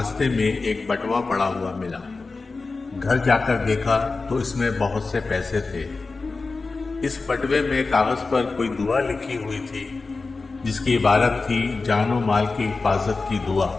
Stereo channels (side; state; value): right; quieter; 3.9 dB